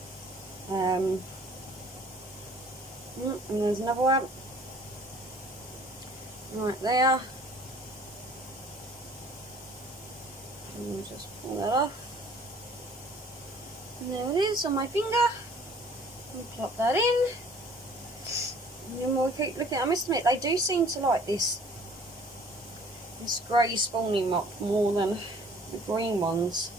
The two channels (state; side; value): normal; both; correlation 0.53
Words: And there's another one right there. And just pull that off. And there it is on my finger. And plop that in. And then we'll keep looking. I must admit, they do seem to like this grey spawning mop more than the green ones